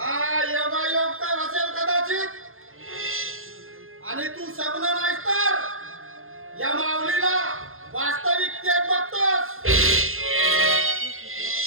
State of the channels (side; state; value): left; late; 0.61 ms